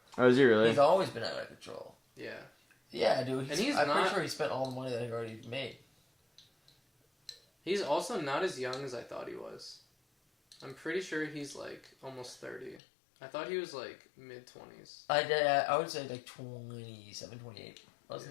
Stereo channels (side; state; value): right; drops out; at 12.8 s